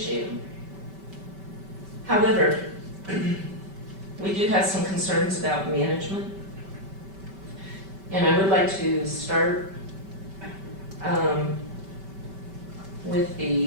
them. However, we do have some concerns about management, and I would like to start with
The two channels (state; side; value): late; left; 5.2 ms